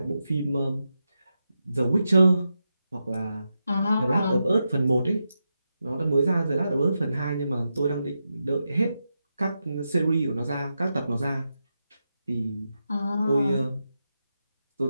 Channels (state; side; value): inverted; both; correlation -0.88